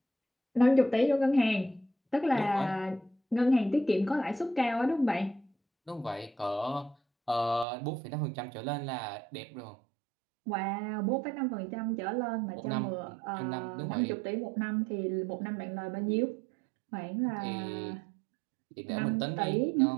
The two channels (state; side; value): drops out; left; at 7.7 s